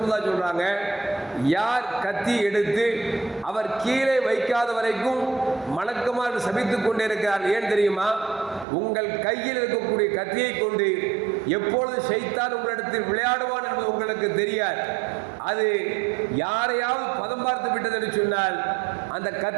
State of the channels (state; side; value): drops out; left; at 8.7 s